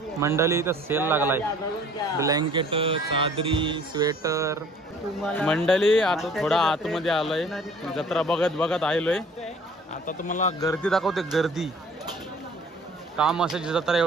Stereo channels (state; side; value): normal; both; correlation 0.52